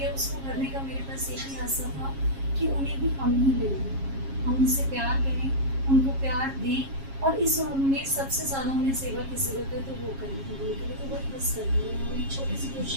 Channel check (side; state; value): left; late; 7.4 ms